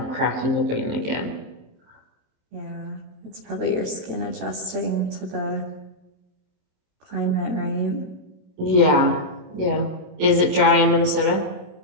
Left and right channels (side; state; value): left; late; 27 ms